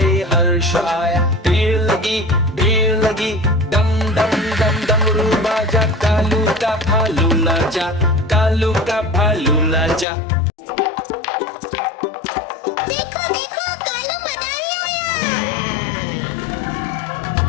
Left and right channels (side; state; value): right; drops out; at 10.1 s